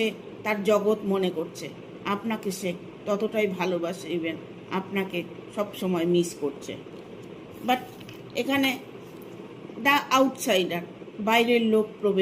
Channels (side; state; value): both; identical; correlation 1.00